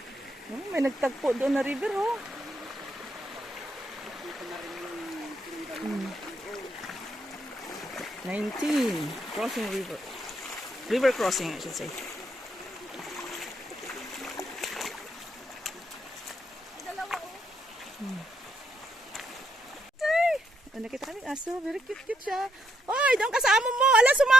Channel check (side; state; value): both; normal; correlation 0.78